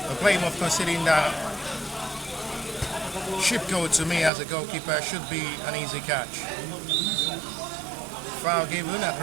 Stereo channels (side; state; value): left; drops out; at 4.3 s